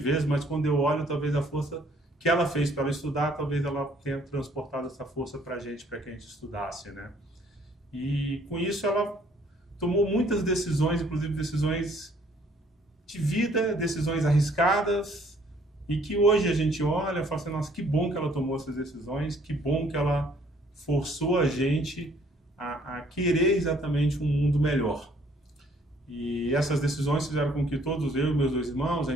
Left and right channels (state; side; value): normal; both; correlation 0.62